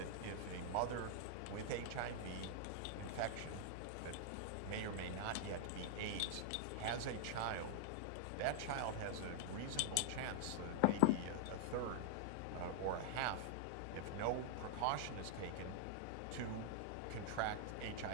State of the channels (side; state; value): both; different; correlation -0.01